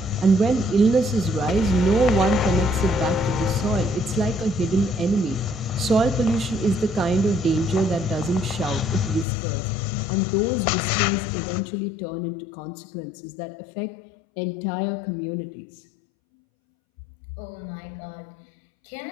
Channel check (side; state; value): right; drops out; at 9.2 s